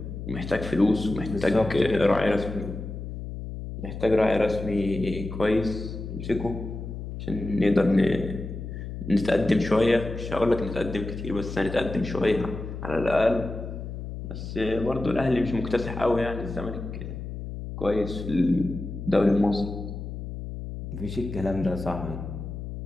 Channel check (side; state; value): left; noise; hum, 8 dB below the sound